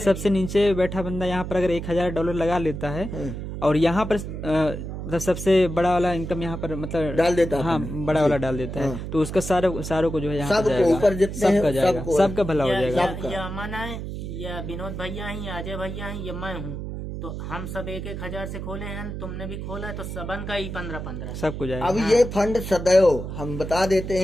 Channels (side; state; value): right; noise; hum, 7 dB below the sound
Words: नीचे बैठा बंदा यहाँ पर अगर $1,000 लगा लेता है और यहाँ पर मतलब सबसे बड़ा वाला इनकम यहाँ पर मतलब डाल देता है। हाँ, बड़ा वाला डाल देता है, तो उसका सारों को जो है यहाँ पर सबको जाएगा, ऊपर जितने हैं, सबका जाएगा, सबको। सबका भला हो जाएगा। या अमन है या विनोद भैया हैं या अजय भैया हैं या मैं हूँ, तो हम सब 1,000 से खोले हैं। तुमने भी खोला है तो सबन का ही 15-15 सबको जाएगा। अब ये फंड सदैव हम बता देते